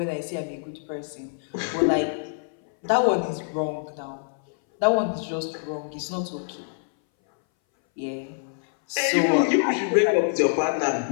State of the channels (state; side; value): silent; right; 60 dB below the other